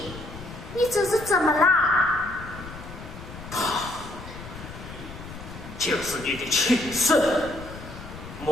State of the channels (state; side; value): noise; left; rumble, 13 dB below the sound